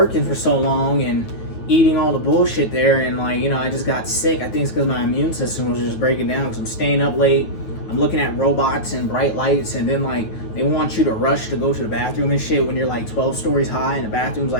for so long and eating all the bullshit there. And, like, you know, I just got sick. I think it's because my immune system was just breaking down because I'm staying up late. I'm looking at robots and bright lights. And then, like, they want you to rush to go to the bathroom and shit when you're like 12 stories high and the bathroom's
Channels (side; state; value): right; late; 9.4 ms